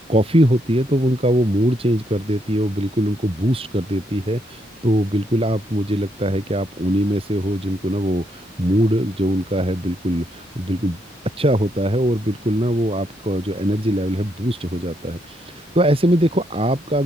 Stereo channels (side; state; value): both; normal; correlation 0.77